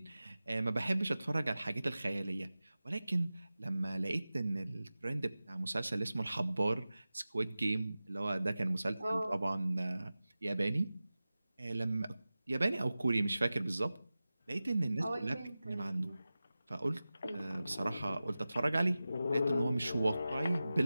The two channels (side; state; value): both; inverted; correlation -0.96